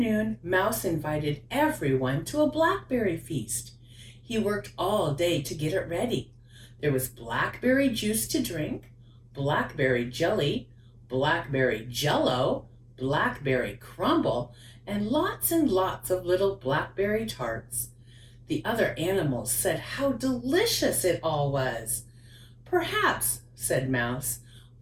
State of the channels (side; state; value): both; identical; correlation 1.00